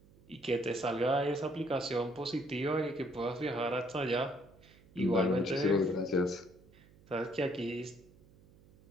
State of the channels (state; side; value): noise; right; hum, 26 dB below the sound